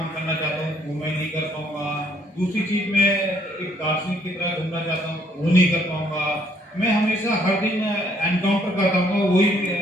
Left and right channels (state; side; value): normal; both; correlation 0.66